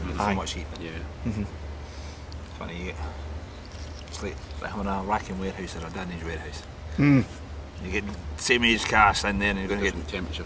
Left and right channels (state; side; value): identical; both; correlation 1.00